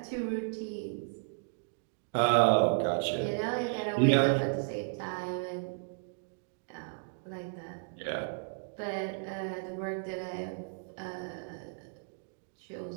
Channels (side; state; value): left; silent; digital silence